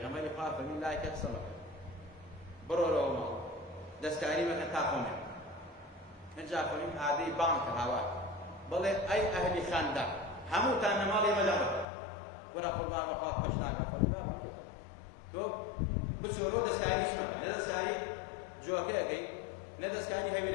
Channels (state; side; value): drops out; right; at 11.9 s